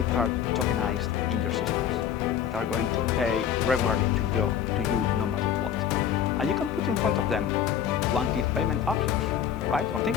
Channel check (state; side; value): quieter; right; 9.0 dB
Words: card tokenized in your systems that are going to pay regularly to you no matter what. And you can put in front of them one-click payment options, right? Or